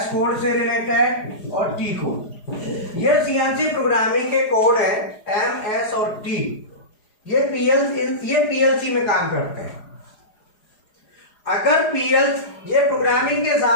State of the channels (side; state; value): right; late; 4.9 ms